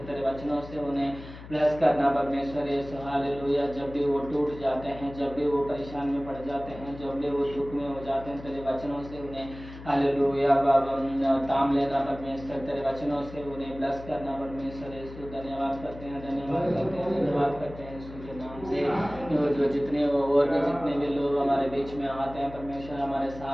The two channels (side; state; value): left; noise; hum, 15 dB below the sound